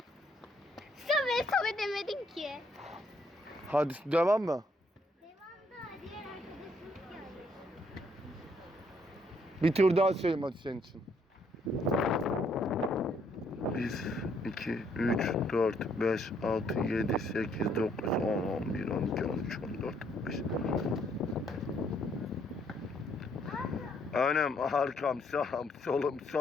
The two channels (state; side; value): normal; both; correlation 0.69